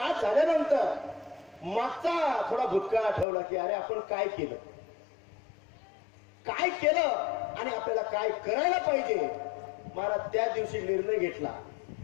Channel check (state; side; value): drops out; right; at 3.2 s